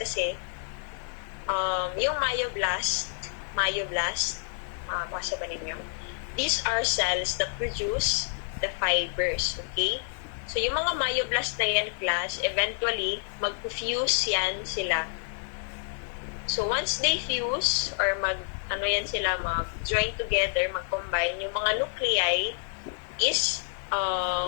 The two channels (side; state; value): right; silent; 59 dB below the other